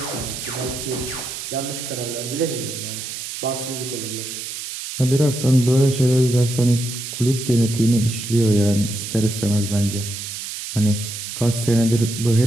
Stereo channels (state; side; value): noise; right; hiss, 7 dB below the sound